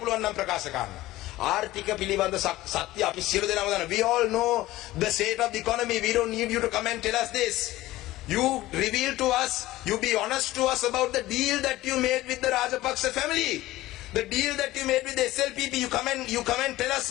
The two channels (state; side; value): quieter; right; 16.9 dB